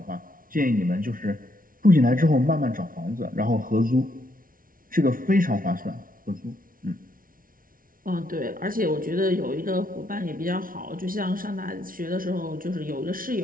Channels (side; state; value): left; late; 0.41 ms